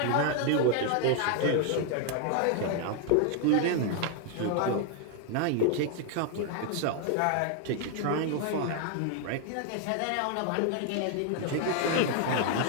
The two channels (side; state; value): both; different; correlation 0.00